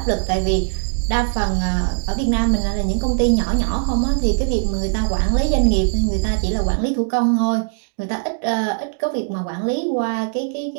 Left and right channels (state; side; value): silent; left; digital silence